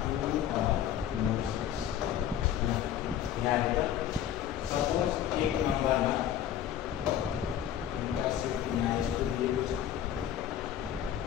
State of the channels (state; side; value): quieter; right; 10.4 dB